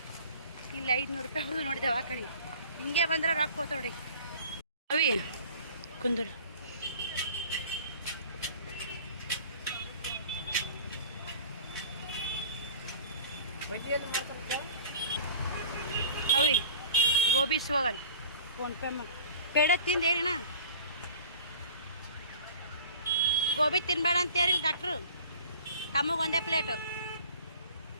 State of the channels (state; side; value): inverted; both; correlation -0.45